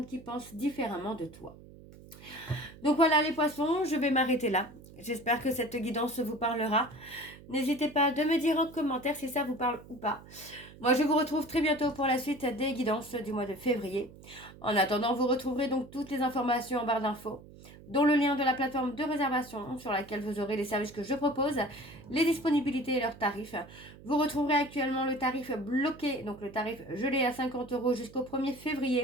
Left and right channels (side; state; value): right; noise; hum, 19 dB below the sound